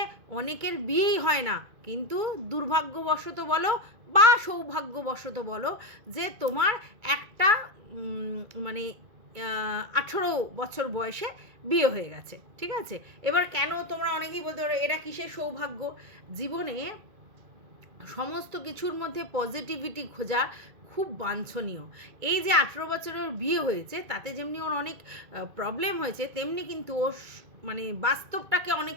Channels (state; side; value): late; left; 2.2 ms